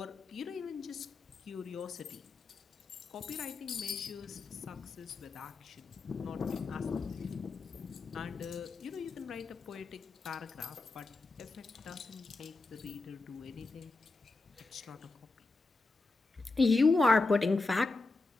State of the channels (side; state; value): right; quieter; 3.5 dB